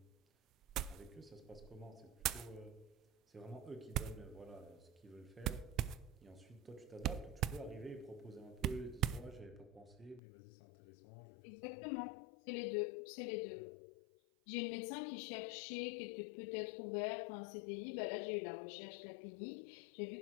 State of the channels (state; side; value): drops out; right; at 10.2 s